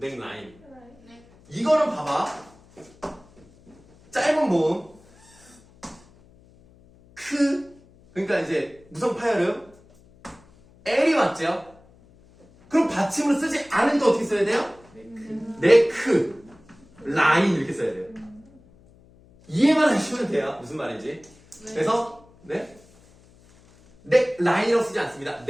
라인. 네. 이거는 봐봐. 짧은 모음 그러니까 이제 무성 파열음 L이 맞죠? 그럼 받침으로 쓰지 않으니까 어떻게 써야 돼요? 네크 라인 이렇게 써야 돼요. 이해만 하시면 돼요. 무슨 말인지. 그래서 네 라인이라고 쓰지 않습니다.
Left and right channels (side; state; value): left; noise; hum, 27 dB below the sound